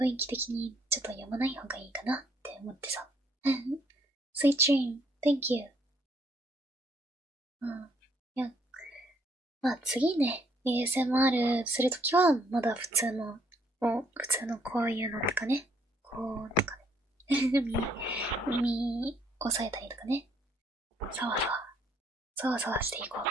囲気的にちょっと読まない方がいいかなって思ってさ。Sweet dream, thank you. いや、次ね、ASMR するときはまだ普通の普通のこういうのとかね、こうとかね、耳押さえたりとかね、さわさわしていこう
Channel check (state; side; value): normal; both; correlation 0.67